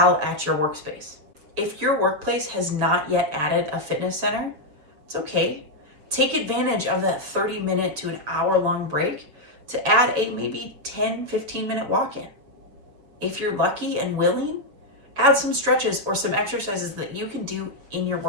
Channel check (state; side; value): late; left; 7.1 ms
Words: at your workspace. If your workplace has not yet added a fitness center, it's okay. Take advantage of that 30-minute to an hour-long break to add a maybe 10, 15-minute walk-in. If you're lucky and willing, add some stretches or some exercises that you can do in your